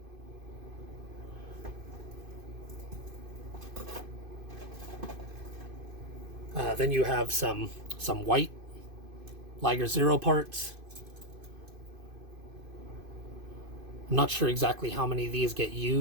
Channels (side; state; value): left; late; 2.5 ms